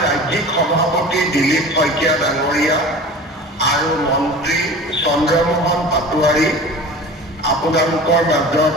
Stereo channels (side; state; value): both; normal; correlation 0.38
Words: ৰাজ্যিক সভাপতি দিলীপ শইকীয়া ডাঙৰীয়া আৰু মন্ত্ৰী চন্দ্ৰমোহন পাটোৱাৰী আপোনালোকৰ মাজত